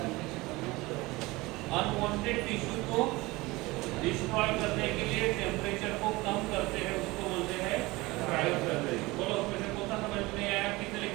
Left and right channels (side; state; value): left; quieter; 21.6 dB